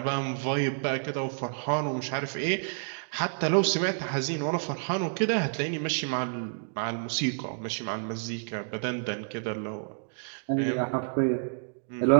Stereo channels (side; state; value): left; silent; digital silence